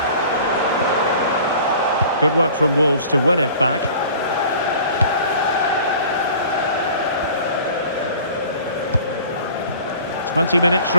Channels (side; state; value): both; inverted; correlation -0.46